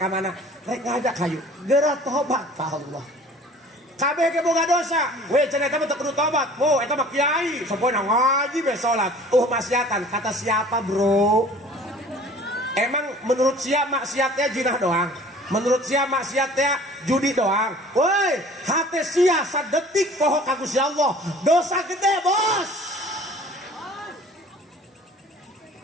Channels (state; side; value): normal; both; correlation 0.48